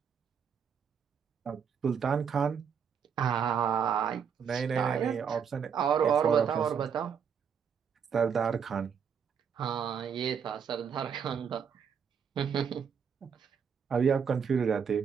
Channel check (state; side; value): quieter; left; 7.1 dB